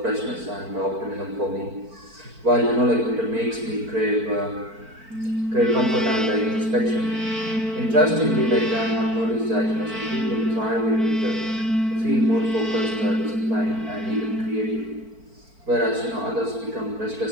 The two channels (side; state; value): left; late; 4.5 ms